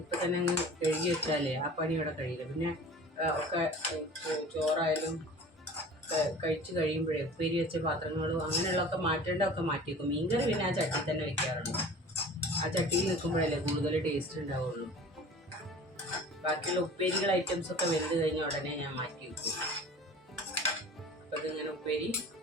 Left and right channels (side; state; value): both; normal; correlation 0.42